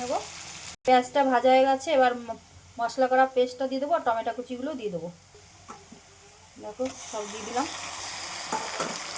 নেবো। পেঁয়াজটা ভাজা হয়ে গেছে, এবার মশলা করা পেস্টটা দিয়ে দেবো আর টমেটো কুচিগুলো দিয়ে দেবো। দেখো সব দিয়ে দিলাম।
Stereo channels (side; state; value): both; identical; correlation 1.00